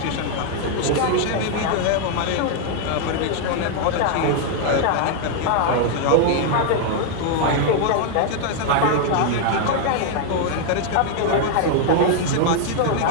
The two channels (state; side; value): different; both; correlation 0.00